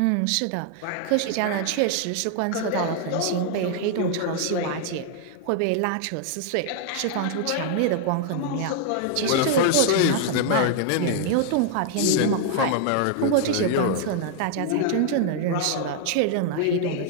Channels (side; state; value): both; different; correlation 0.00